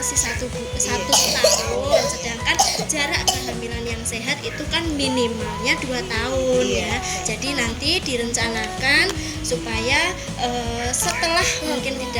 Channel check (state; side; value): identical; both; correlation 1.00